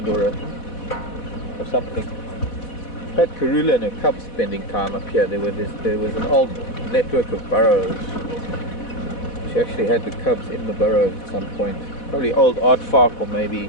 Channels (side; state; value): right; late; 4.1 ms